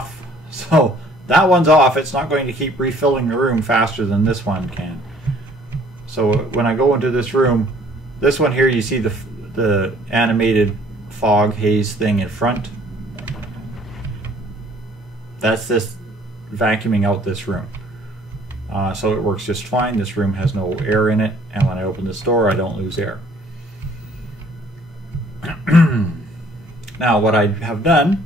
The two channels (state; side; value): normal; both; correlation 0.58